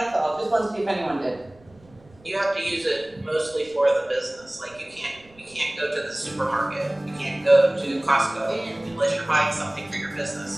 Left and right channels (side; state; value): right; noise; rumble, 27 dB below the sound